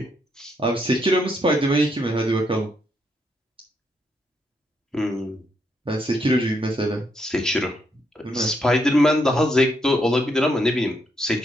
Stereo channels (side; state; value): both; normal; correlation 0.76